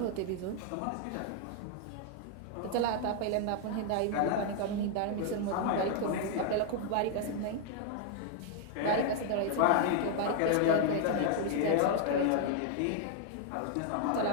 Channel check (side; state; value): both; different; correlation 0.00